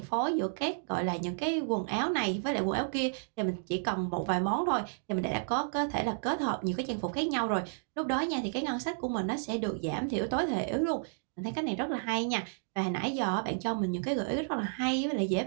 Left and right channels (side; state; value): left; silent; digital silence